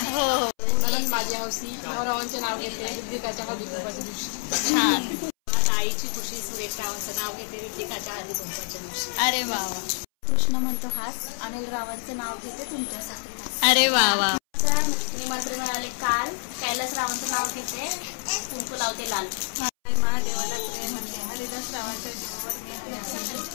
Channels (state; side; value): silent; right; 60 dB below the other